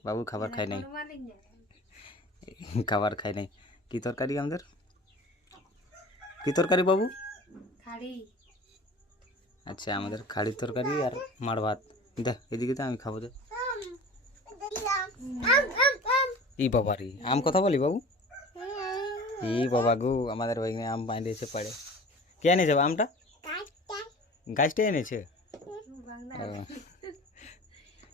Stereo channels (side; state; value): both; normal; correlation 0.40